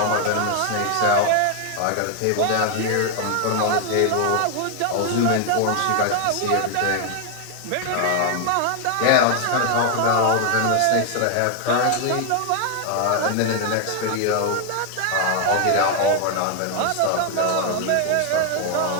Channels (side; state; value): both; different; correlation 0.00